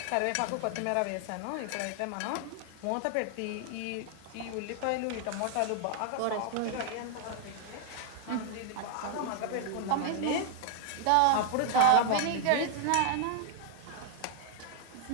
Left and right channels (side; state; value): both; different; correlation 0.00